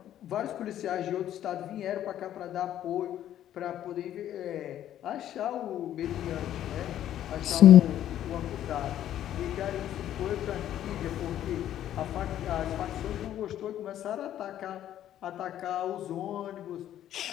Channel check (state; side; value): quieter; right; 11.6 dB